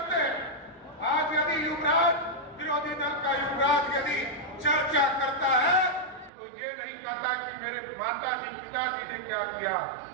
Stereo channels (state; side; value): drops out; left; at 6.3 s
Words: हैं, आज यदि युवराज, विरोधी दल का युवराज यदि चर्चा करता है तो ये नहीं कहता कि मेरे माता जी पिताजी ने क्या किया,